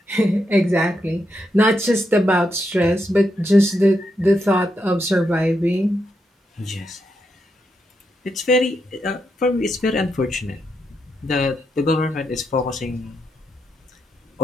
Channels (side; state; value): both; normal; correlation 0.82